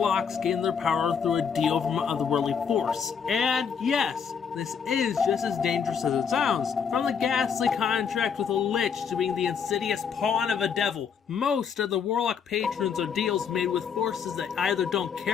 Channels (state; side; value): quieter; right; 6.8 dB